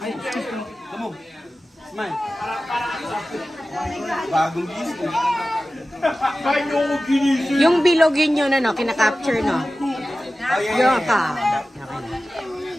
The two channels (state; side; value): normal; both; correlation 0.95